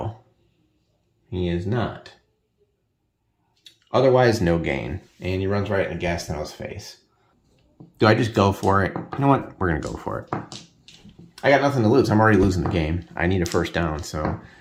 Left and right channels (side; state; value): both; identical; correlation 1.00